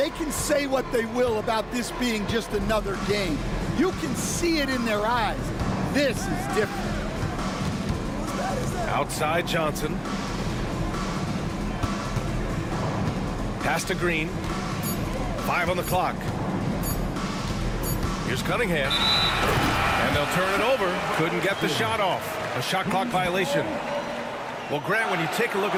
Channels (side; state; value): both; identical; correlation 1.00